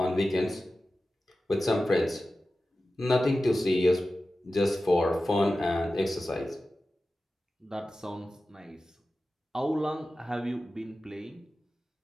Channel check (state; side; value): normal; both; correlation 0.94